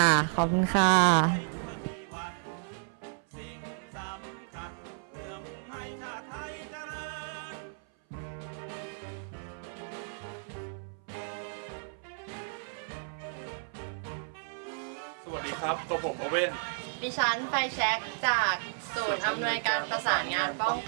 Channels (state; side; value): silent; left; 56 dB below the other